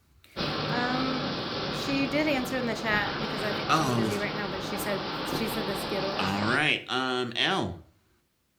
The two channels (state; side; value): identical; both; correlation 1.00